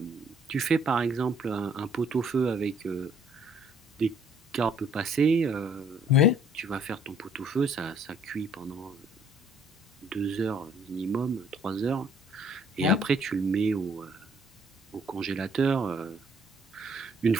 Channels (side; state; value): both; normal; correlation 0.62